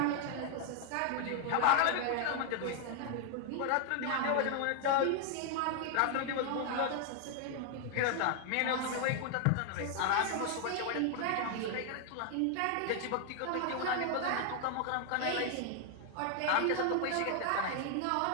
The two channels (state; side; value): different; both; correlation 0.00